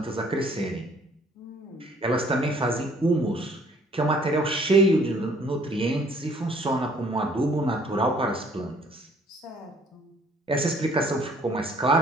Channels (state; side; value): normal; both; correlation 0.59